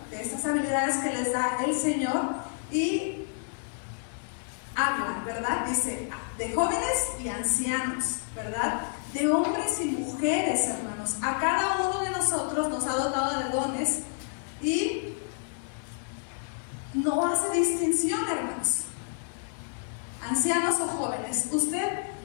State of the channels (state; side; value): silent; right; digital silence